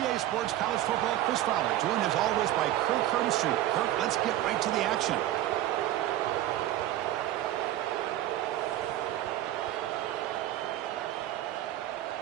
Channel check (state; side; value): quieter; left; 13.7 dB